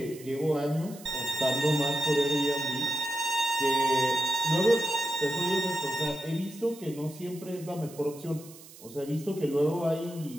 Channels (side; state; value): right; noise; hiss, 19 dB below the sound